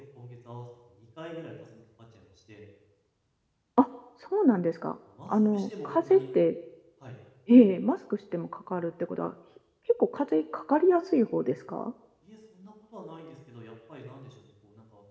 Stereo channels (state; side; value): identical; both; correlation 1.00